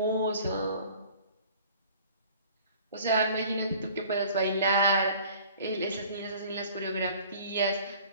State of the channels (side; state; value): both; inverted; correlation -0.49